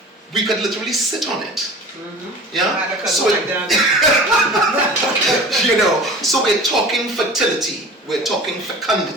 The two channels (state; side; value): normal; both; correlation 0.40